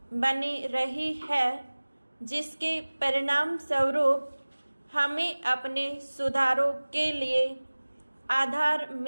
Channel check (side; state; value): both; inverted; correlation -1.00